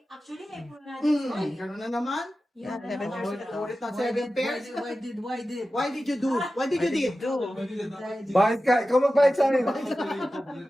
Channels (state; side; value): normal; both; correlation 0.94